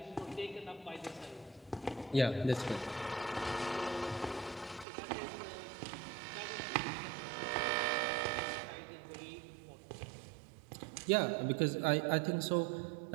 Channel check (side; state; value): left; drops out; at 4.9 s